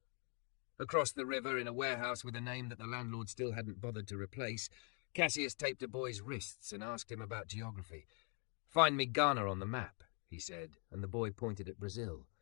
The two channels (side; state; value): right; quieter; 38.6 dB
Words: Across the river, in a warehouse with a name that the landlord still hadn't bothered to replace, Cassius taped a boy's wrists and asked him about geography. Find me Ghana on the map, he said, and the boy pointed at Brazil.